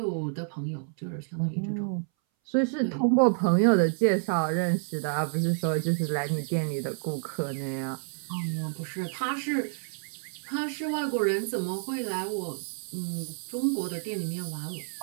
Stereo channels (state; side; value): silent; left; 59 dB below the other